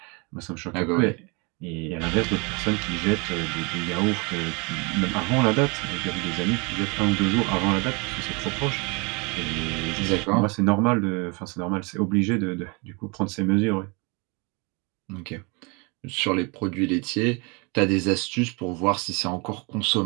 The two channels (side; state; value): left; quieter; 30.4 dB